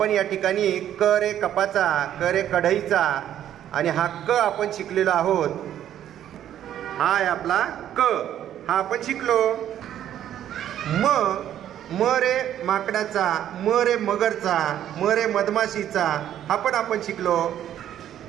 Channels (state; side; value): quieter; left; 11.0 dB